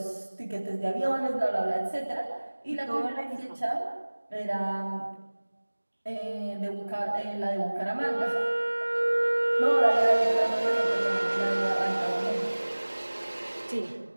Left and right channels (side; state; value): both; inverted; correlation -1.00